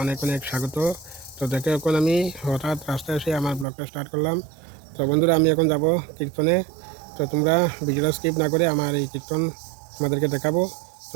অনেক অনেক স্বাগত। তো দেখো, এখন আমি হঠাৎ রাস্তায় এসে আমার ব্লগটা স্টার্ট করলাম। তো বন্ধুরা, আমি এখন যাব কীর্তনে। তো তোমরা ভিডিওটা স্কিপ না করে আমার এই কীর্তন তোমাদেরকে দেখাবো,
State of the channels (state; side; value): drops out; left; at 3.7 s